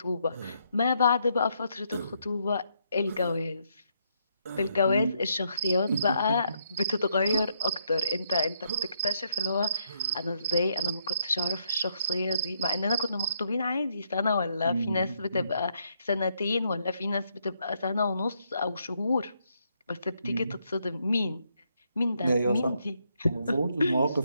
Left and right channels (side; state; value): both; inverted; correlation -0.75